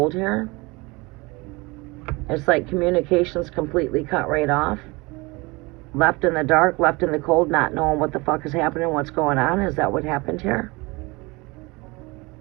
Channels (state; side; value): quieter; left; 24.7 dB